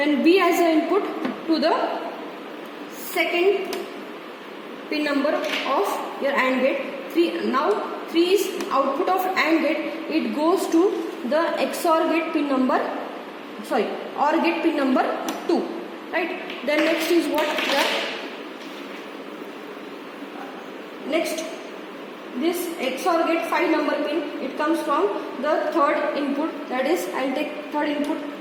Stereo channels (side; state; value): both; identical; correlation 1.00